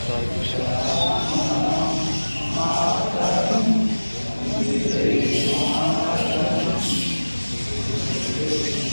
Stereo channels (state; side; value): inverted; both; correlation -1.00